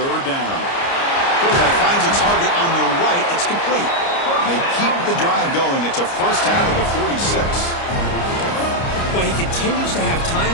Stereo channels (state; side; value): late; right; 29 ms